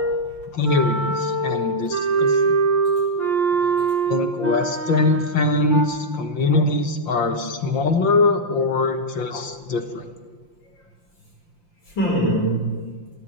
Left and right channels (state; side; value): late; right; 5.8 ms